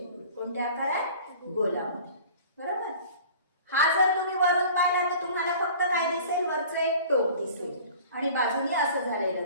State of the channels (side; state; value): both; inverted; correlation -0.44